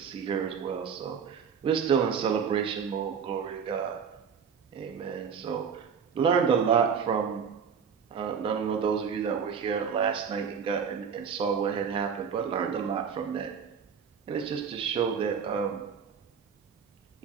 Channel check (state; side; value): quieter; left; 6.8 dB